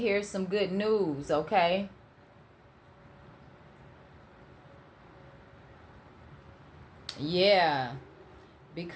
some good news. Okay. Yeah,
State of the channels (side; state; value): both; identical; correlation 1.00